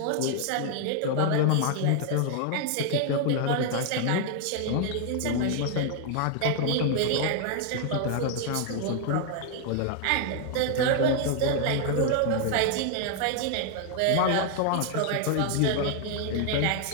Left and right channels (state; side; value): different; both; correlation 0.00